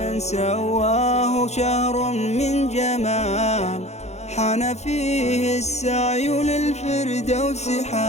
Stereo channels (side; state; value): right; late; 0.32 ms